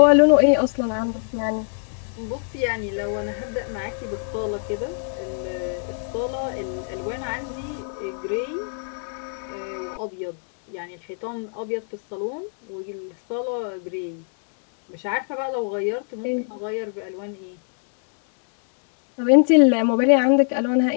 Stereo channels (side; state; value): right; silent; digital silence